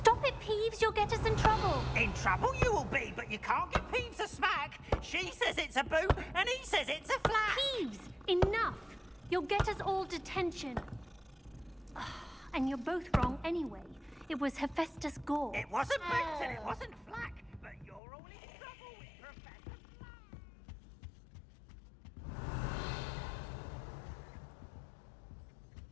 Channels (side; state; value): right; drops out; at 18.0 s